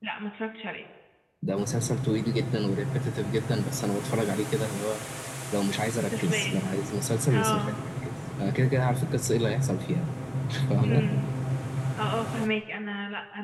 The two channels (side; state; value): both; identical; correlation 1.00